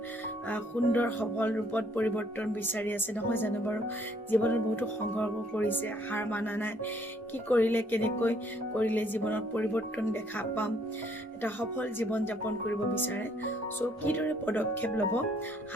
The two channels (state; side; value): normal; both; correlation 0.65